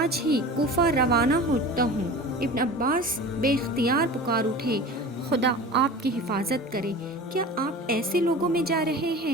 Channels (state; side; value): normal; both; correlation 0.36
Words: ہی کوفہ روانہ ہوتا ہوں۔ ابن عباس بے اختیار پکار اٹھے، خدا آپ کی حفاظت کرے، کیا آپ ایسے لوگوں میں جا رہے